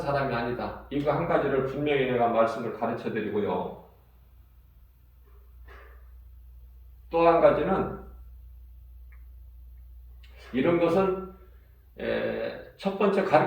사람이 아니다. 이거 한 가지를 분명히 내가 말씀을 가르쳐 드리고요. 또 한 가지는 이런 것은 첫 번째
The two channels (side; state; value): both; identical; correlation 1.00